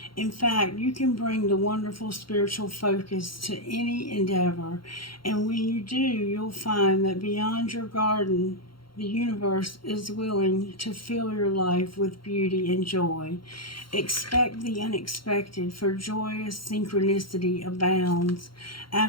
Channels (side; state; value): right; late; 0.73 ms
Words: In fact, you can bring the wonderful spiritual focus to any endeavor. And when you do, you'll find that beyond your garden, the universe is willing to fill your life with beauty and joy. Expect the unexpected, for joyous synchronicity abounds.